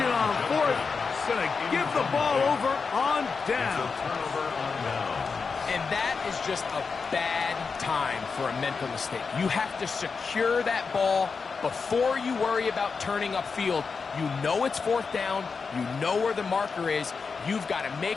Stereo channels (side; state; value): right; quieter; 5.1 dB